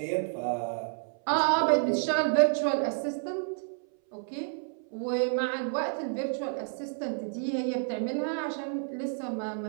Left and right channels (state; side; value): silent; left; 58 dB below the other